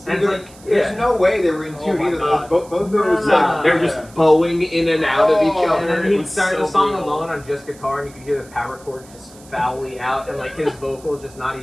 And it's like, There's yeah. no way they were in Oh tune my either. God. Both those Nah. They're just bowing in and out of each Oh. other. And then It he'd was start so the song brutal. alone on just guitar, and you could hear the power chords just foully out, and like his vocals just not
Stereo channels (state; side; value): noise; right; hiss, 23 dB below the sound